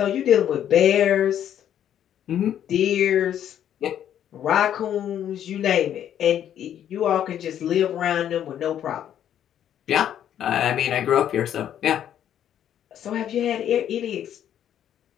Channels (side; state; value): right; quieter; 10.2 dB